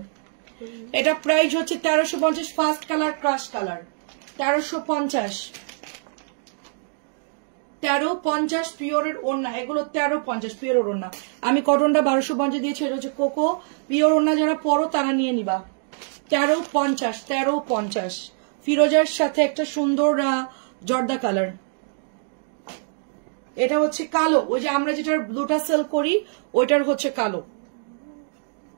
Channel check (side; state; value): left; silent; digital silence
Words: এটা প্রাইস হচ্ছে 1350, ফার্স্ট কালার ক্রাশ কালার, 1350। 1350 পিওরের ওড়না, এগুলো 1350 পিওরের ওড়না। আমি কটনটা 1250 দিয়েছি, এটা হচ্ছে কোকো। পিওর ওড়না যারা পরো তারা নিয়ে নিবা। 1350, 1350। ফিরোজার সাথে একটা সুন্দর জর্দা কালার। এটা হচ্ছে কালো, ওই যে আমরা যেটার ব্লুটা সেল করি ওইটার হচ্ছে কালো।